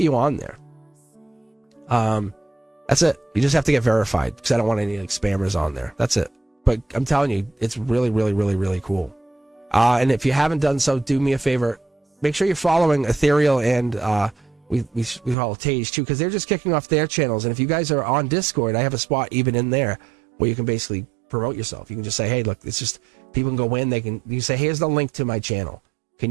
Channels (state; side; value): drops out; left; at 15.4 s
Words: on there. That's it. You just have to get verified because I don't want any like spammers on there. That's it. But I'm telling you, it's really, really, really, really cool. And if you haven't done so, do me a favor. Make sure you're following Ethereal and we follow Tage too, because they're just kicking off their channels. And if you guys are on Discord, I have a spot even in there where you can basically promote yourself. You can just say, hey, look, it's just people can go in. You say, here's the link to my channel. Can